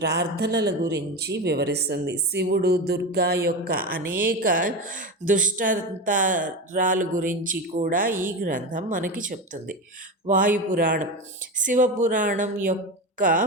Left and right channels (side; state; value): both; normal; correlation 0.21